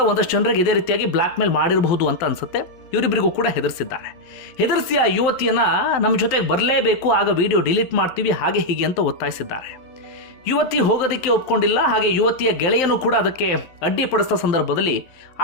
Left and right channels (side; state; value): right; late; 11 ms